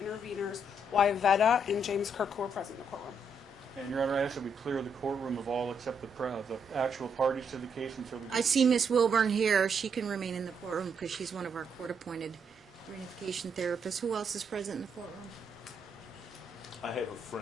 interveners, Wyvetta and James Kirk, who are present in the courtroom. And, Your Honor, I ask that we clear the courtroom of all except the actual parties to the case until we... I see Miss Wilburn here. She can remain in the courtroom because she's one of our court-appointed reunification therapists. Who else is present in the courtroom? I have a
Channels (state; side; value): normal; both; correlation 0.75